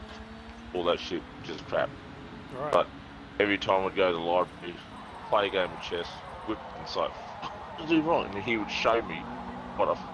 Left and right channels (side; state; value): both; identical; correlation 1.00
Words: all that shit, just crap. Right. But every time I'd go to the library, play a game of chess, whip and say, "What did I do wrong?" And he would show me what I